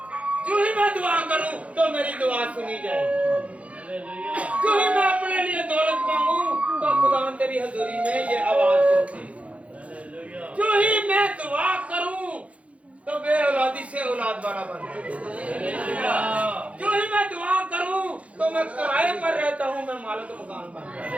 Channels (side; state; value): left; late; 0.064 ms